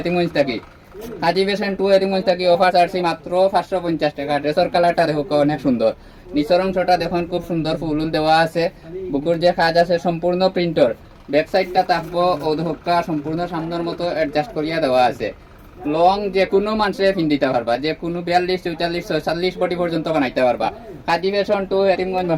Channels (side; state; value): both; identical; correlation 1.00